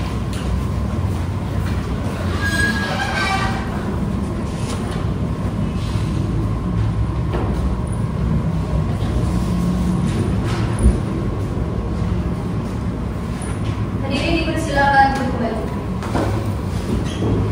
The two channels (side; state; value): both; identical; correlation 1.00